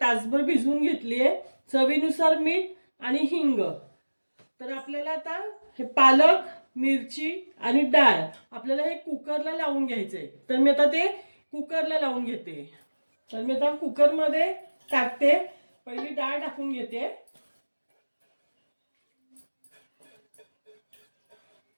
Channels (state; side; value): inverted; both; correlation -1.00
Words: तासभर भिजवून घेतलीये. चवीनुसार मीठ आणि हिंग. तर आपल्याला आता हे पालक, मिरची आणि डाळ आपल्याला हे कुकरला लावून घ्यायचंय. तर मी आता ते कुकरला लावून घेते. तर मी आता कुकरमध्ये टाकते. पहिली डाळ टाकून घेते.